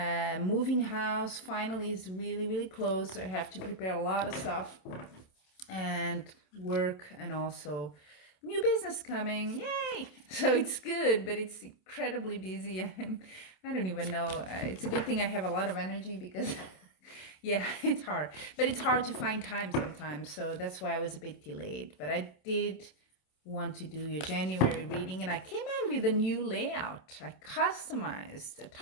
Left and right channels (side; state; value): right; late; 27 ms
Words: house finally is really close, so I have to prepare a lot of stuff and work, and also new business coming, yay. So it's good, but it's incredibly busy. I don't even know, it's a good thing I have a lot of energy because yeah, it's hard, but it's hard to find time sometimes, so that's why I was a bit delayed. But I did want to do your January reading, and I came out with a new layout. I customized a